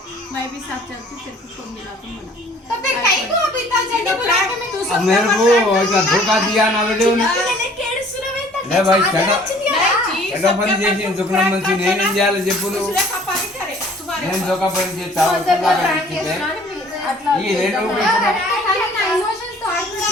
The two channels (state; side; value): normal; both; correlation 0.54